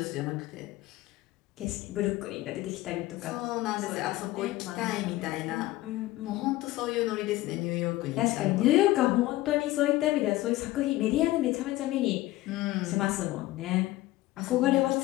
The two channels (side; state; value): right; quieter; 17.2 dB